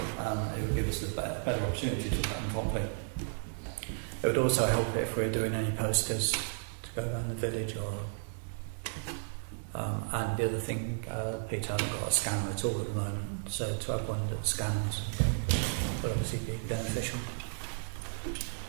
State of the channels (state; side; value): silent; left; digital silence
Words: would give us a better opportunity to put them properly. It would also help if we're doing any posters to go around the village and the other thing, Peter hasn't got a scanner at all at the moment, so to have one that scans would obviously be beneficial.